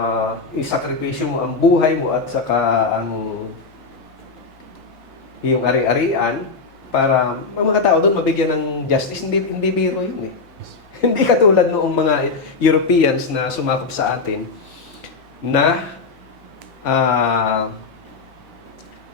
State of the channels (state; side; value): quieter; right; 4.3 dB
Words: isakripisyo mo ang buhay mo at saka ang iyong ari-arian para ang mga tao doon mabigyan ng justice. Hindi biro yun Hindi katulad noong mga Europeans na sumakop sa atin na ah,